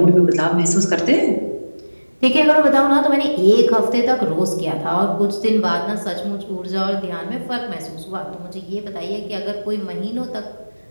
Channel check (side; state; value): both; inverted; correlation -1.00